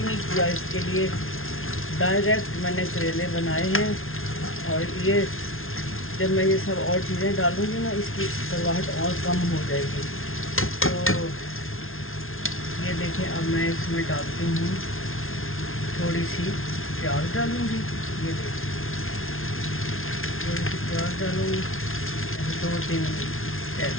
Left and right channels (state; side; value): late; right; 0.61 ms